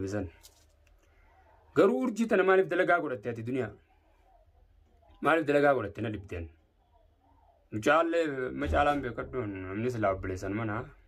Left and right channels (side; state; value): both; identical; correlation 1.00